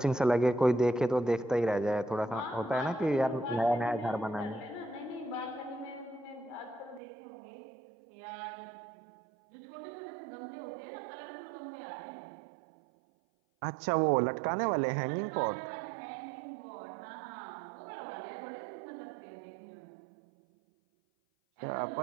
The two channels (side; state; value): left; drops out; at 7.0 s